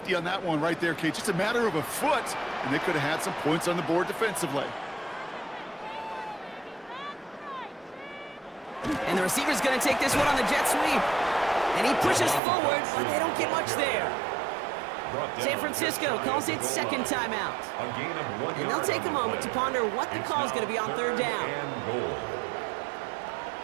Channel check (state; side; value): drops out; left; at 12.4 s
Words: on that one right there, Kate. Just a matter of a foot, and they could have had some points on the board defensively. And the receiver's going to take this one on the jet sweep. And he pushes forward, but they don't get much there. San Francisco calls it 2nd timeout. And they'll take a moment to ponder what the call is going to be on 3rd down.